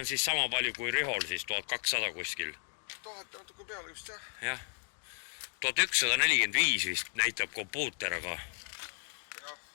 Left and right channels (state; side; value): silent; right; 55 dB below the other